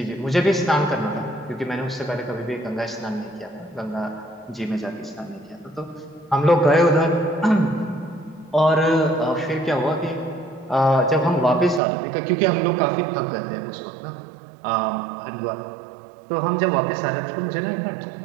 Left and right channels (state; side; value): drops out; left; at 11.8 s